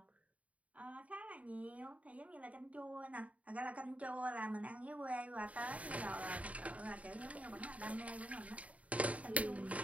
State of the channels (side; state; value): left; late; 0.068 ms